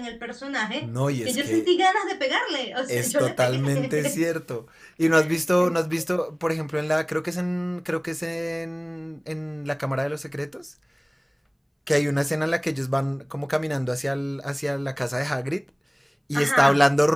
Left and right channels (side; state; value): both; identical; correlation 1.00